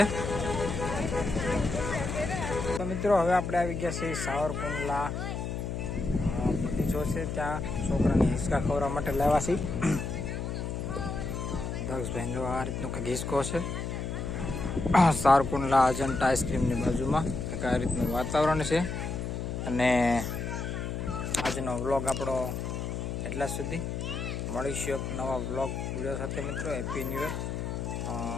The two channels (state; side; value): noise; left; hum, 4 dB below the sound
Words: તો મિત્રો હવે આપણે આવી ગયા છીએ સાવરકુંડલા બગીચો છે. ત્યાં છોકરાને હિંચકા ખવડાવવા માટે લાવ્યા છીએ. દક્ષભાઈ જો આ રીતનું કંઈક હિંચકો છે. સાવરકુંડલા અજંટા આઈસ્ક્રીમની બાજુમાં કંઈક આ રીતનું વાતાવરણ છે. અને આજનો વ્લોગ આપણો એટલા સુધી. મળીશું એક નવા વ્લોગ વિડીયો સાથે મિત્રો. Happy new year.